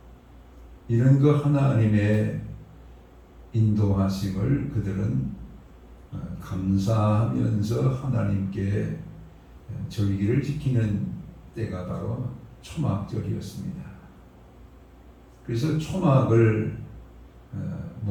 이런 그 하나님의 인도하심을 그들은 감사하면서 하나님께 절기를 지키는 때가 바로 초막절이었습니다. 그래서 초막을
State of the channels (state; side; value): identical; both; correlation 1.00